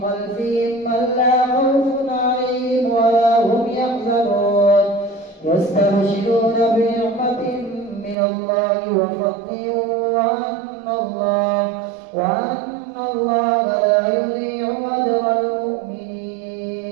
خلفهم ألا خوف عليهم ولا هم يحزنون يستبشرون بنعمة من الله وفضل وأن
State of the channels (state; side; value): drops out; left; at 8.2 s